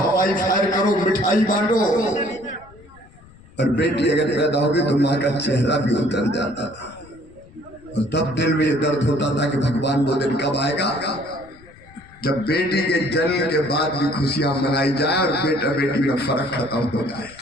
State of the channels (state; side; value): noise; left; rumble, 24 dB below the sound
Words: फायर करो, मिठाई बांटो। और बेटी अगर पैदा होगी तो माँ का चेहरा भी उतर जाता था और तब दिल में ये दर्द होता था कि भगवान वो दिन कब आएगा जब बेटी के जन्म के बाद भी खुशियां मनाई जाए और बेटा बेटी में फर्क खत्म हो जाए।